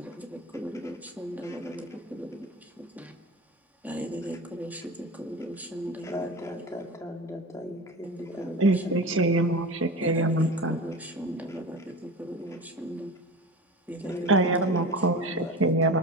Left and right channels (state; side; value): normal; both; correlation 0.31